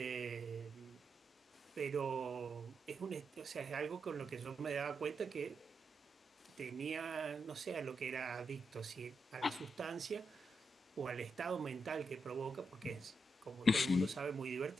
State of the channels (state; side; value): normal; both; correlation 0.84